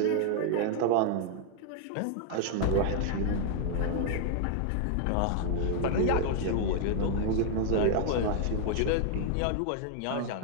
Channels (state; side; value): different; both; correlation 0.00